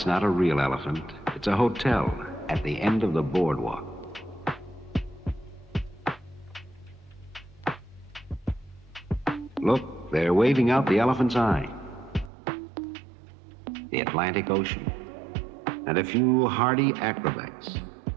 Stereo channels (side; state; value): left; drops out; at 12.3 s